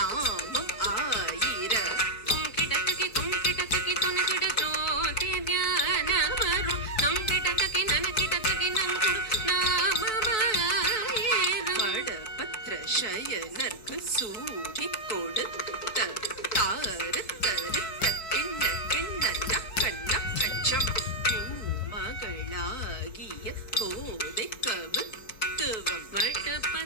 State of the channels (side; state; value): right; late; 4.6 ms